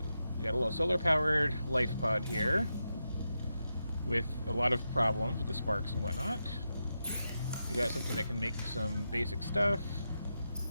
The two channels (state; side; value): inverted; both; correlation -0.87